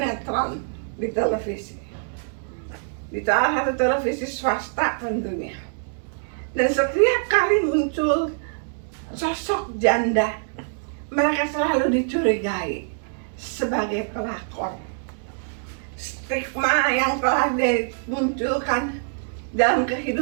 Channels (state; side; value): silent; left; digital silence